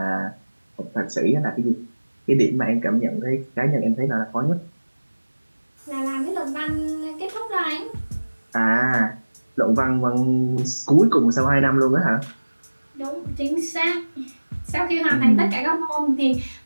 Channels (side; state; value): both; inverted; correlation -1.00